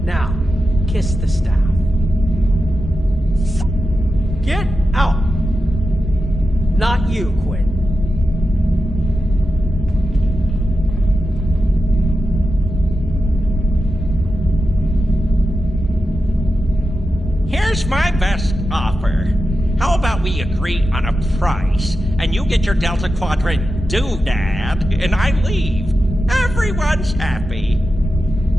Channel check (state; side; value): normal; both; correlation 0.90